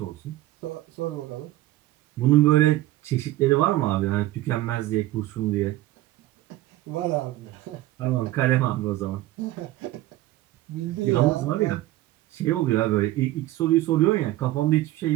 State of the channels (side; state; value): left; quieter; 15.9 dB